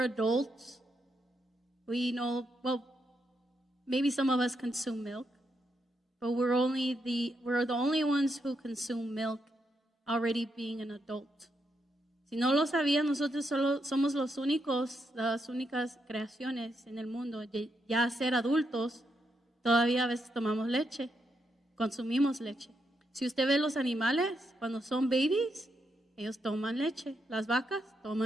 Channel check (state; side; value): normal; both; correlation 0.81